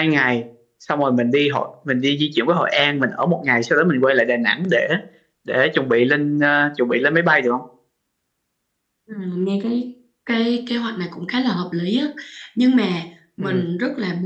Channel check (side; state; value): both; identical; correlation 1.00